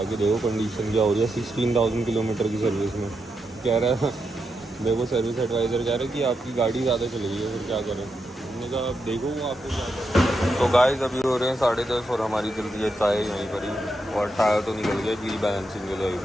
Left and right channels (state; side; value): normal; both; correlation 0.84